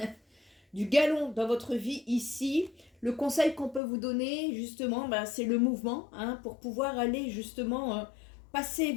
Du galon dans votre vie ici. Le conseil qu'on peut vous donner justement, c'est le mouvement, hein, pour pouvoir aller justement passer.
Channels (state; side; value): drops out; right; at 3.8 s